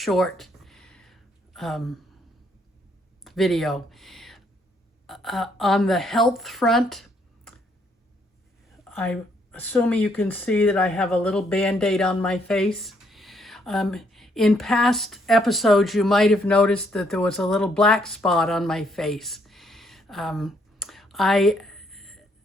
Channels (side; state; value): both; normal; correlation 0.70